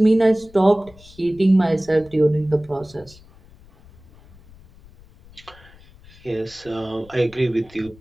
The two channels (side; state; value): left; noise; rumble, 24 dB below the sound